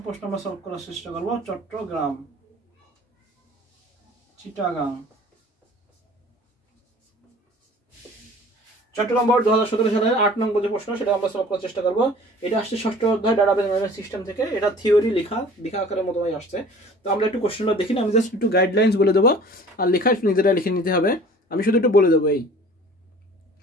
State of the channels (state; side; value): normal; both; correlation 0.47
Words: প্রশ্ন আমরা সলভ করার চেষ্টা করব। চট্টগ্রাম, চিটাগাং। চট্টগ্রাম বোর্ড 2017 সালের 8 নং যে প্রশ্ন সেটা আমরা সলভ করার চেষ্টা করব। এটা আসছে ষষ্ঠ অধ্যায় ডাটাবেস ম্যানেজমেন্ট সিস্টেম থেকে। এটা থিওরি লেখা আকারের মতোই আসছে। তো আমরা একটু কোশ্চেনটা দেখি না, আমি জাস্ট একটু গাইডলাইন্স বলে দেবো, আর লেখা নিজেরা লিখে নিতে হবে। আমি শুধু একটু বলে দেবো। এই